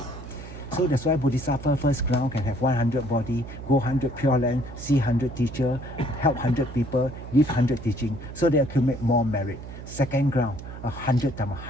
So that's why Bodhisattva first ground can have 100 body, go 100 pure land, see 100 teacher, help 100 people, give 100 teaching, so they accumulate more merit. Second ground, 100 times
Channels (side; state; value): right; noise; hum, 12 dB below the sound